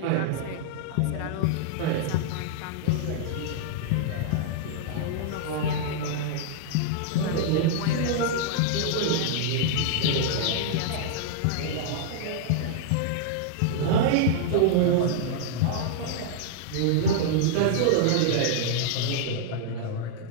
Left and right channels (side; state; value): both; different; correlation -0.01